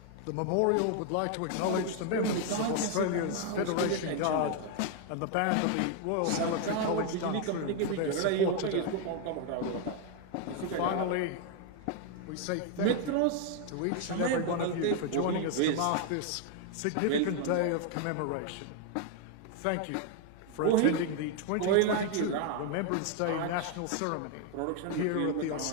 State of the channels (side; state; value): both; different; correlation 0.00